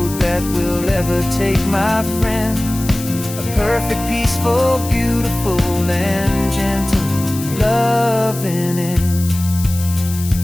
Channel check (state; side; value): noise; left; hiss, 12 dB below the sound